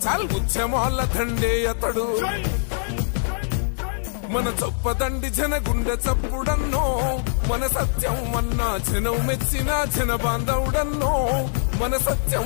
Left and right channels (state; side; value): silent; right; 63 dB below the other